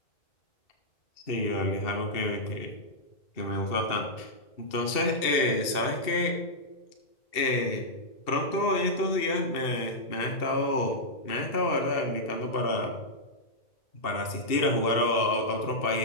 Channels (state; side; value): late; right; 2.6 ms